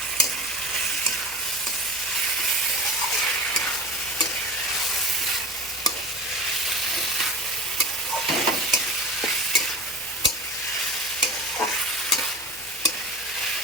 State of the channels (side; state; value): both; normal; correlation 0.34